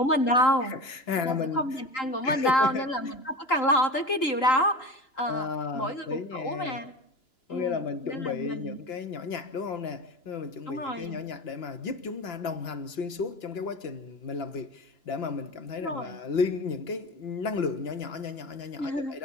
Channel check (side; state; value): right; late; 2.9 ms